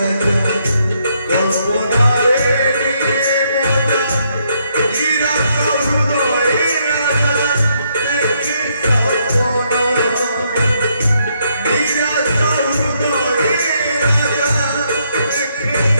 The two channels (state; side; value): inverted; both; correlation -0.74